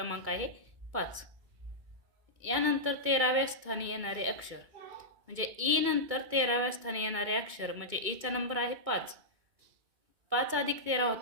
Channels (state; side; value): late; left; 2.2 ms